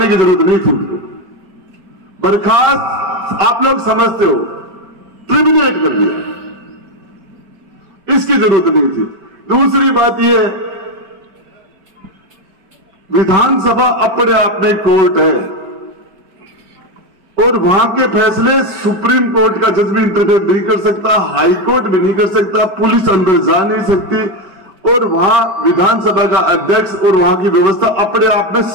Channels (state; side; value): late; left; 5.2 ms